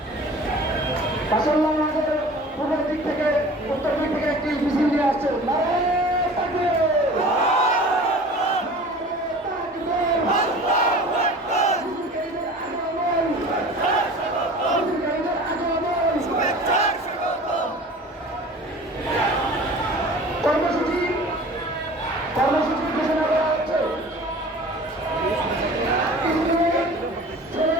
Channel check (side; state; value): both; normal; correlation 0.42